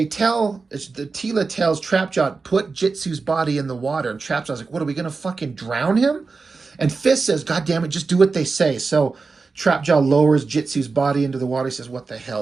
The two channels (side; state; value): left; quieter; 4.3 dB